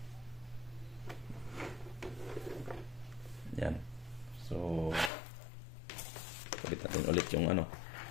Yan. So kabit natin ulit yung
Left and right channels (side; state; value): right; drops out; at 5.1 s